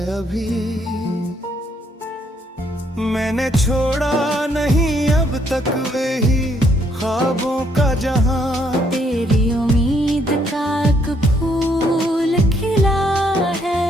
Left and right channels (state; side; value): normal; both; correlation 0.70